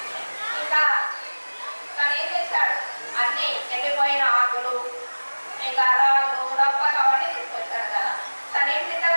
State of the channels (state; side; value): inverted; both; correlation -1.00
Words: ఇంకా తను ఏం చేశాడు, అన్ని ఎండిపోయిన ఆకులు, ఇంకా రాళ్ళు, రప్పలు అవన్నీ తీసుకొచ్చాడు కదా. తను ఏం